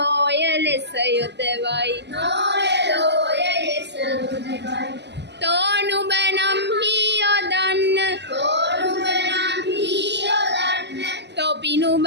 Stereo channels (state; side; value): late; left; 0.50 ms